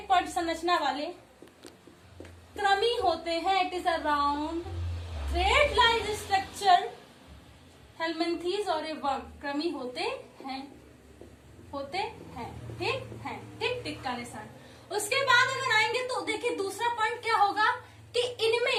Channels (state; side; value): identical; both; correlation 1.00